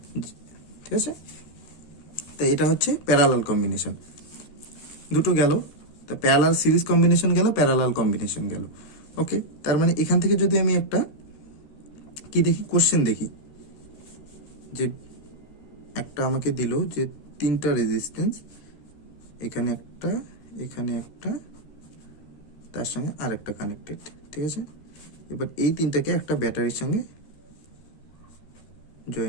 ঠিক আছে, তো এটা হচ্ছে প্যারালাল কম্বিনেশন। দুটো গেল, তো প্যারালাল সিরিজ কম্বিনেশন গেল, প্যারালাল কম্বিনেশন গেল। ওকে, তার মানে এখান থেকে যদি আমি একটা কি দেখি, কোশ্চেন দেখি, যে একটা আমাকে দিল যে তিনটা রেজিস্ট্যান্স, এখানে একটা, এখানে একটা, তার সঙ্গে আরেকটা কানেক্টেড। ঠিক আছে, এবার এই তিনটাকে একটা ব্যাটারির সঙ্গে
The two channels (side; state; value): right; late; 13 ms